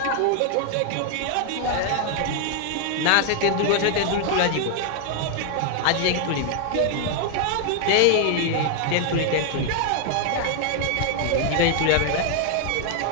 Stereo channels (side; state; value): both; different; correlation 0.00